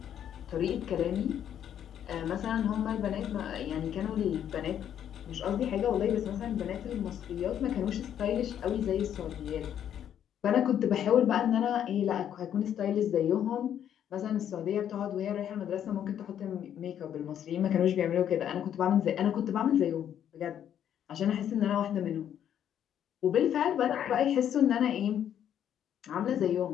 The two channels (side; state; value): right; quieter; 9.8 dB